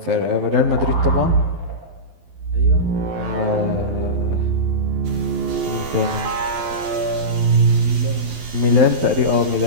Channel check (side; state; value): left; late; 12 ms